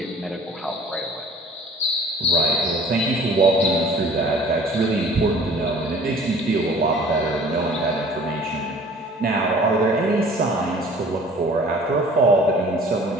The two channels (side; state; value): both; normal; correlation 0.49